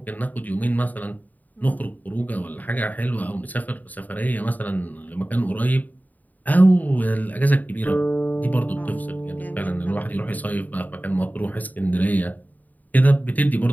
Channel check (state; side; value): late; right; 0.081 ms